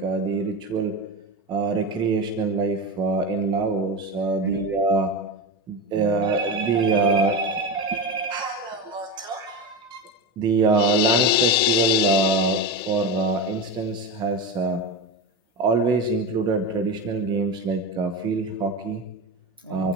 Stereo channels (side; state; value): both; normal; correlation 0.20